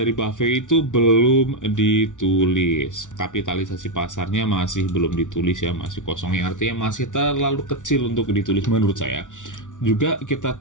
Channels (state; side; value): late; right; 0.87 ms